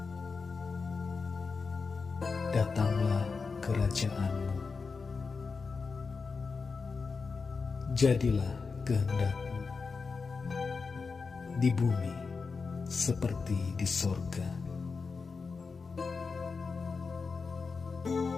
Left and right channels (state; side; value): quieter; right; 4.8 dB